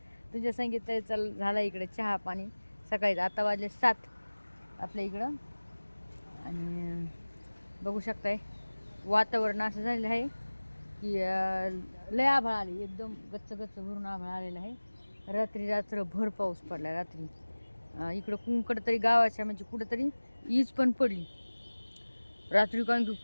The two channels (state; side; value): inverted; both; correlation -1.00